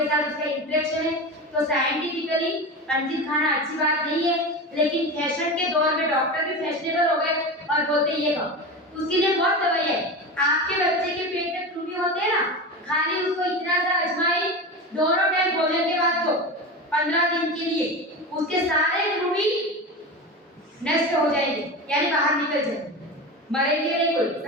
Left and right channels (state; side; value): normal; both; correlation 0.25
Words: साथ उसका इंटरेक्शन है। तो साइंटिफिकली अंजीर खाना अच्छी बात नहीं है, लेकिन फैशन के दौर में डॉक्टर भी फैशनेबल हो गए और बोलते ये खाओ। उसके लिए बहुत दवाई है। आपके बच्चे के पेट में कृमि होते हैं ना, खाली उसको इतना सा अजवाइन दोनों टाइम भोजन के बाद दो 15 दिन के लिए, उसके सारे कृमि नष्ट हो जाएंगे, यानी बाहर निकल जाएंगे, मरेंगे नहीं कोई,